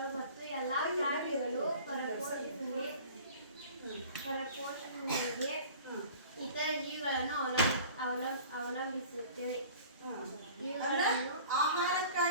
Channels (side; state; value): both; inverted; correlation -0.45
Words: ಮತ್ತು ಎಲ್ಲಾ ಪ್ರಾಣಿಗಳು ಪರಪೋಷಣೆಗೆ ಇತರ ಜೀವಿಗಳನ್ನು ಅವಲಂಬಿಸುತ್ತವೆ.